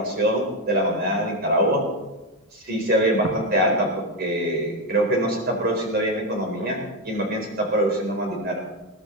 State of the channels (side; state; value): both; normal; correlation 0.09